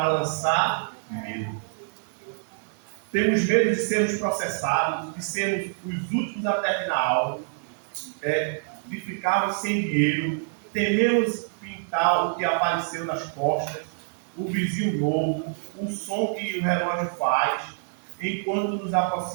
lançar medo. Temos medo de sermos processados, de sermos os últimos a terminar algo, de ficarmos sem dinheiro, tememos pintar o que apareceu nas costas, o vizinho novo, o som que o relógio faz, enquanto nos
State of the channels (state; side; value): silent; left; digital silence